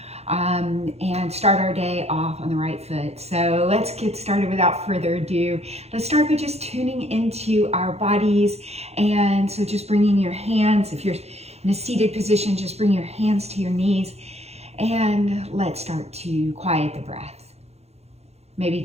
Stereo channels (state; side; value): late; left; 0.31 ms